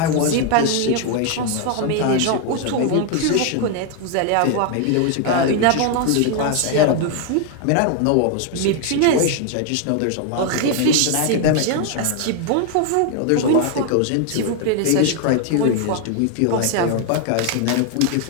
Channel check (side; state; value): both; different; correlation 0.00